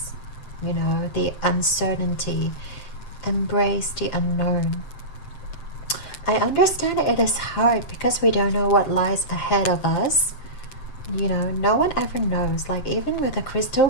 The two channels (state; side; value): late; right; 8.0 ms